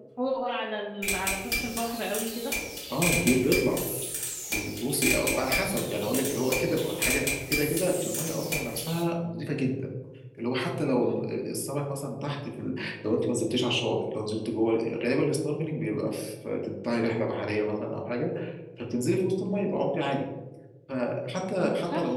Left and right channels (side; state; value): both; identical; correlation 1.00